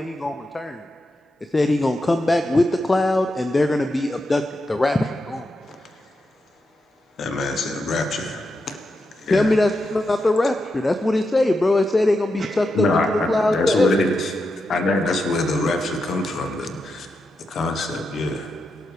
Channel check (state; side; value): normal; both; correlation 0.87